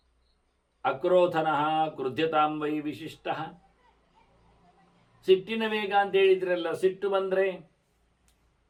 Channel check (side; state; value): both; identical; correlation 1.00